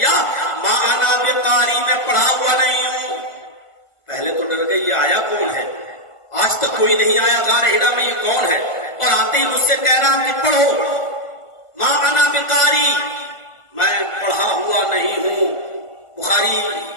ما انا بقاری، میں پڑھا ہوا نہیں ہوں. پہلے تو ڈر گئی، یہ آیا کون ہے؟ آج تک کوئی نہیں آیا غار ہرا میں، یہ کون ہے؟ اور آتے ہی مجھ سے کہہ رہا کہ پڑھو. ما انا بقاری، میں پڑھا ہوا نہیں ہوں. بخاری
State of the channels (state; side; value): late; right; 1.5 ms